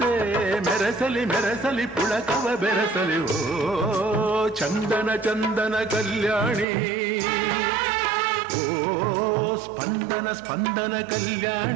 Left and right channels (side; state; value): left; drops out; at 6.7 s